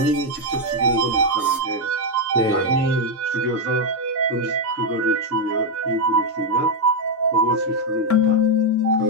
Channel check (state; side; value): normal; both; correlation 0.02